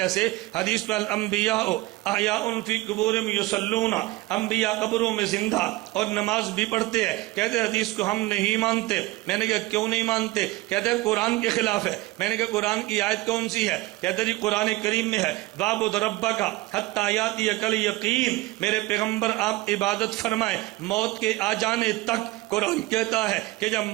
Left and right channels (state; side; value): quieter; left; 19.2 dB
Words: حدیث میں الانبیاء احیاء فی قبورہم یصلون، انبیاء قبروں میں زندہ اور نماز بھی پڑھتے ہیں۔ کہتے حدیث کو ہم نہیں مانتے۔ میں نے کہا کیوں نہیں مانتے؟ کہتے ہیں قرآن کے خلاف ہے۔ میں نے کہا قرآن کی آیت کون سی ہے؟ کہتے جی قرآن کریم میں ہے وَاعْبُدْ رَبَّكَ حَتَّىٰ يَأْتِيَكَ الْيَقِينُ، میرے پیغمبر آپ عبادت فرمائیں موت کے آ جانے تک قرآن کہتا ہے کہ جب